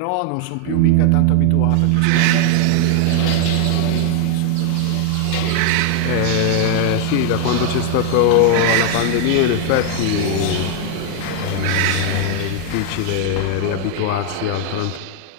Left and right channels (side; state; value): both; different; correlation 0.00